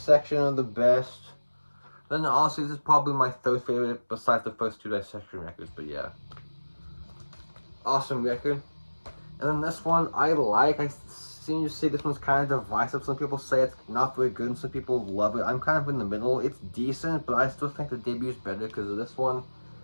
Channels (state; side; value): inverted; both; correlation -1.00